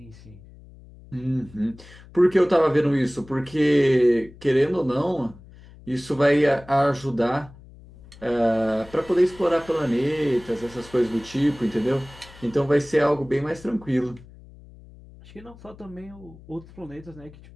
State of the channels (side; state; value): left; noise; hum, 21 dB below the sound